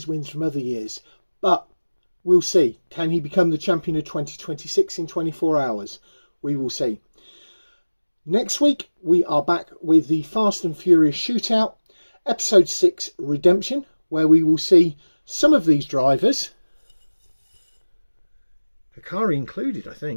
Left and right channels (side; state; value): both; inverted; correlation -1.00